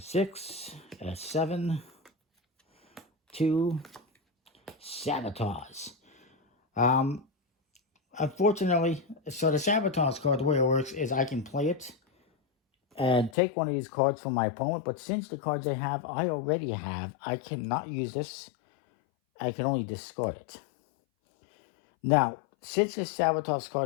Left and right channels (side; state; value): right; drops out; at 13.4 s